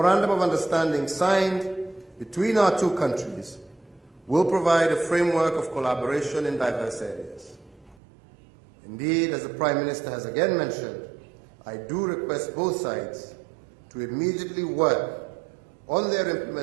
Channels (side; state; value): left; drops out; at 8.0 s